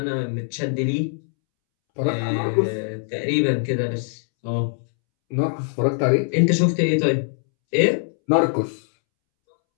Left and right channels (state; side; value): silent; right; 64 dB below the other